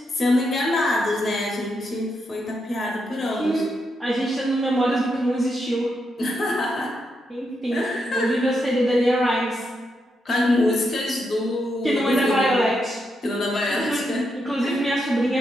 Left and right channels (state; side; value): normal; both; correlation 0.82